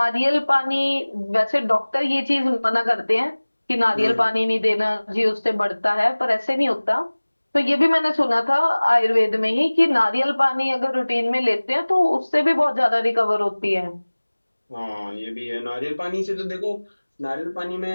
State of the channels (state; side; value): inverted; both; correlation -1.00